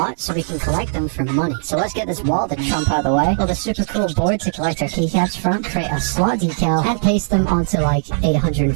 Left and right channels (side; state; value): left; silent; digital silence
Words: so we can collect them for money. So let's get this wall to trump out of the way. Build a super cool board to collect our keycaps from, create a slot decal, and paste them onto like